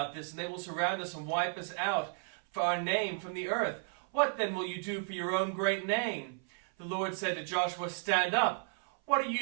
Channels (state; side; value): silent; left; 55 dB below the other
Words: this, and they will surround us and wipe us out for our name from the earth. What then will you do for your own great name?" The Lord said to Joshua, "Stand up. What are